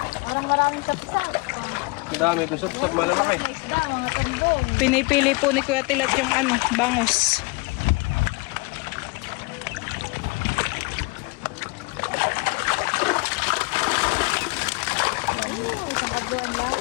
Parang maraming kapsat. Dami, doon sa malalaki. Mga isda, mga tumbong. Pinipili po ni Kuya Tilat yung bangus.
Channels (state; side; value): quieter; right; 28.4 dB